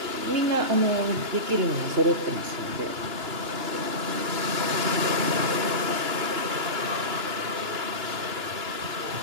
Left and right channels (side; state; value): left; late; 2.9 ms